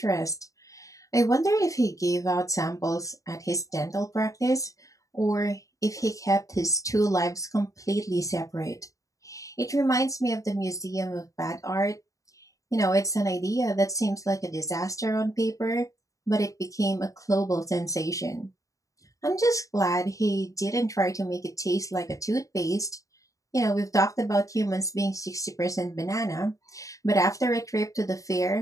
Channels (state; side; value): late; right; 0.16 ms